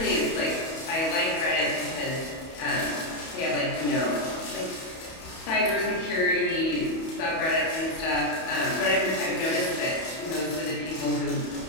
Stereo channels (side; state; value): right; late; 31 ms